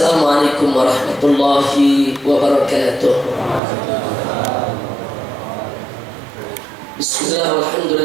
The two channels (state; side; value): drops out; left; at 3.6 s